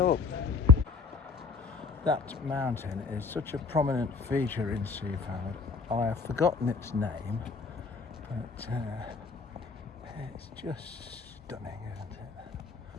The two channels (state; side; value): quieter; right; 4.5 dB